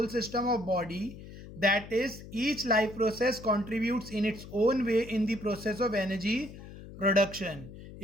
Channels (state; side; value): noise; left; hum, 15 dB below the sound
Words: system of body, that is each life process contributes in its own way in the process of energy production.